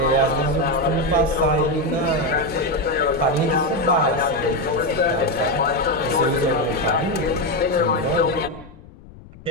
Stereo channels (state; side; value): noise; left; rumble, 20 dB below the sound